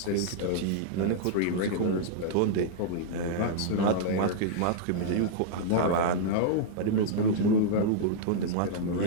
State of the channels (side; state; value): both; different; correlation -0.02